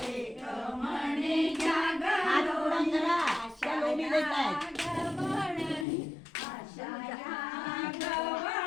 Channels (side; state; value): right; drops out; at 5.9 s